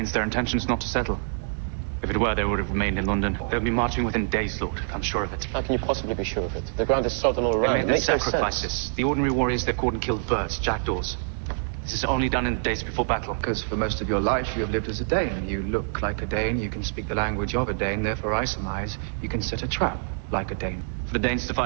Their intention's not to settle. If it were, they would have remained in London. They'll be marching within days, Lord. I'm sure of it. How can you possibly be sure of it? The ground is sodden all They around. made It their makes no sacrifices. sense. The ordinary warriors they've caught and killed birds, jackdaws. This is only done in the days before battle. Because for most of your life you have lived as a Dane. You look like a Dane, you can speak the language of a Dane, therefore I surmise you can set a trap like a Dane. For the Danes to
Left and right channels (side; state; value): left; silent; digital silence